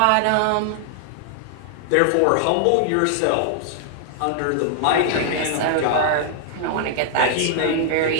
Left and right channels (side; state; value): both; different; correlation 0.00